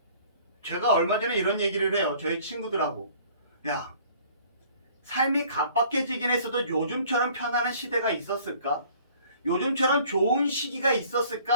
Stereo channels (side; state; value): both; inverted; correlation -0.54